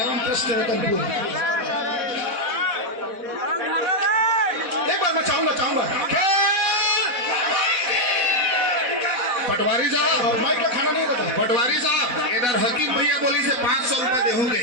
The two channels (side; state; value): left; late; 4.1 ms